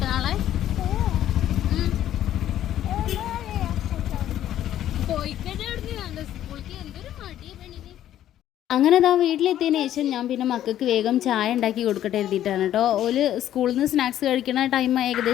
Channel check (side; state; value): right; quieter; 11.9 dB